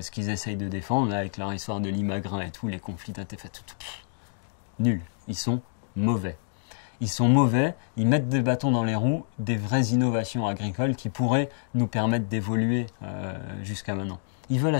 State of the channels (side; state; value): right; silent; digital silence